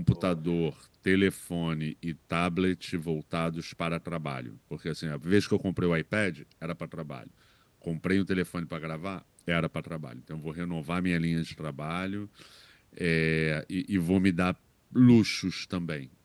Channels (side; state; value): both; identical; correlation 1.00